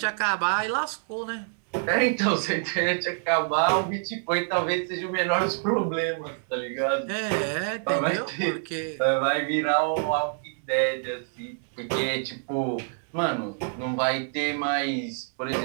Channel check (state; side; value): silent; left; digital silence